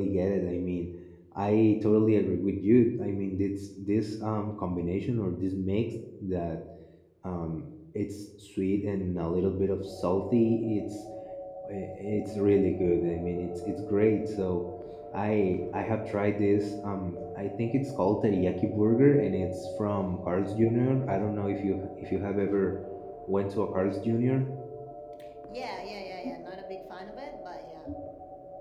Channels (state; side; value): identical; both; correlation 1.00